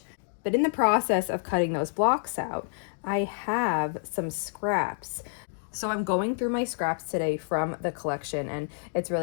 But in the process of cutting those blocks out, I have some scraps. So I'm going through my scraps today from the collection, and it's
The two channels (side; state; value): right; silent; 59 dB below the other